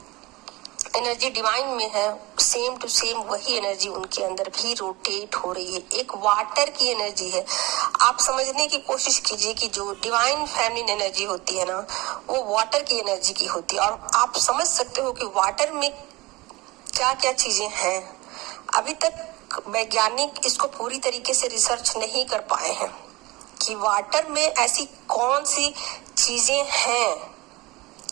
एनर्जी डिवाइन में है सेम टू सेम वही एनर्जी उनके अंदर भी रोटेट हो रही है। एक वाटर की एनर्जी है। आप समझने की कोशिश कीजिए कि जो डिवाइन फेमिनिन एनर्जी होती है ना, वो वाटर की एनर्जी की होती है। और आप समझ सकते हो कि वाटर में क्या क्या चीजें हैं। अभी तक वैज्ञानिक इसको पूरी तरीके से रिसर्च नहीं कर पाए हैं कि वाटर में ऐसी कौन सी चीजें हैं,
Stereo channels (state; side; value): quieter; left; 21.6 dB